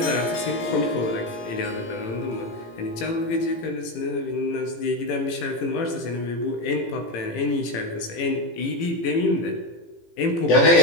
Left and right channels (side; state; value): right; late; 18 ms